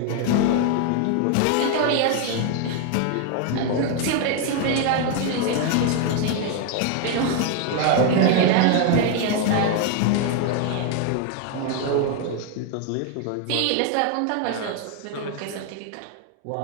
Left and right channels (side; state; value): both; different; correlation 0.01